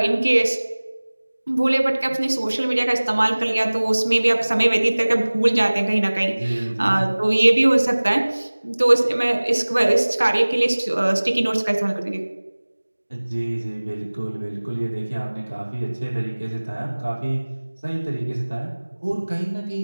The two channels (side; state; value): both; inverted; correlation -1.00